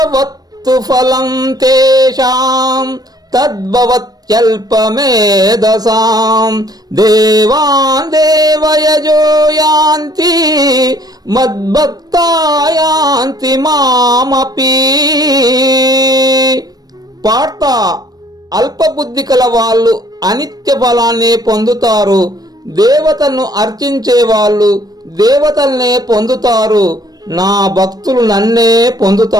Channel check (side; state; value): left; late; 0.19 ms